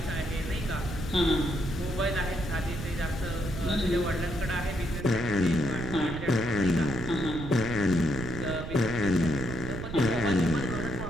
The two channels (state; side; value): noise; right; rumble, 7 dB below the sound